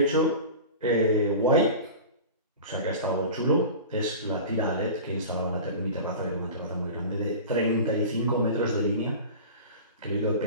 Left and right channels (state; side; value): inverted; both; correlation -0.34